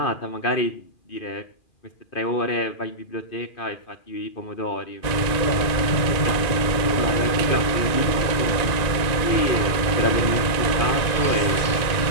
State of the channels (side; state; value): right; late; 2.5 ms